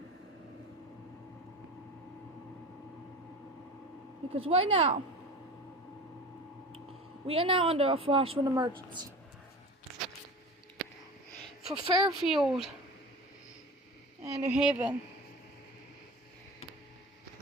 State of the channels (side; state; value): both; normal; correlation 0.34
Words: Because right now, we are now under a flash flood emergency. For Fairfield and New Haven.